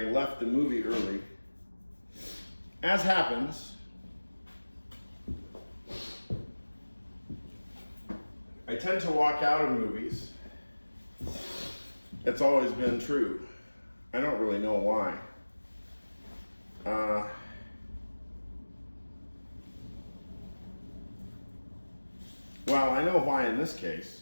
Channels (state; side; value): inverted; both; correlation -1.00